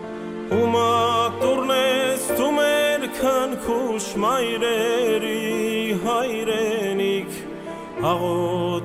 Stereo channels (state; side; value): identical; both; correlation 1.00